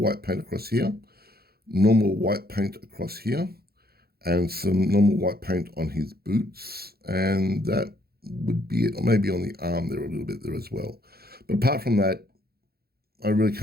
paint across here, normal white paint across here, and some normal white paint on his boots, and that would be it, or maybe on the arm there a little bit there as well. But apart from that, I really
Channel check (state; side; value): late; left; 0.45 ms